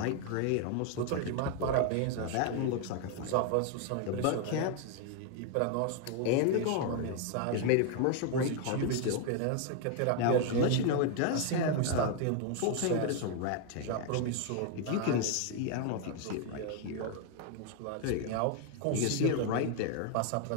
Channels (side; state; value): both; different; correlation 0.00